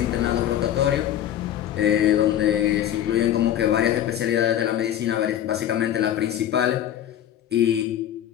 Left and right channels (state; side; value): quieter; right; 11.1 dB